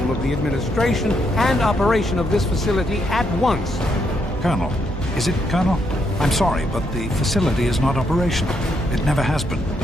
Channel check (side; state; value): both; normal; correlation 0.77